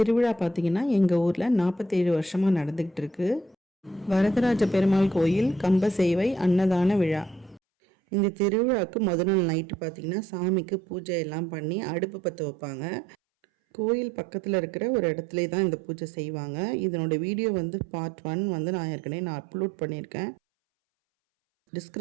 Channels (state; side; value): drops out; left; at 7.6 s